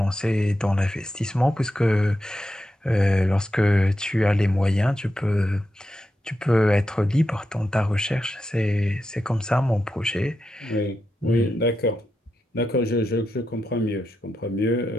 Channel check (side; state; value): both; normal; correlation 0.87